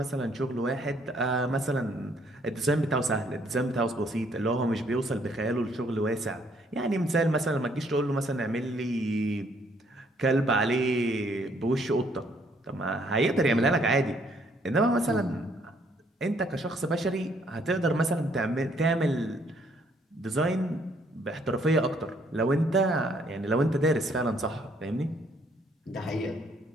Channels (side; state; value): both; normal; correlation 0.66